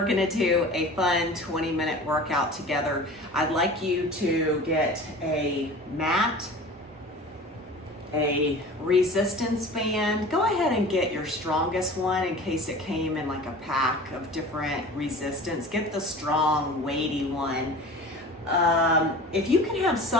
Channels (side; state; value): both; normal; correlation 0.39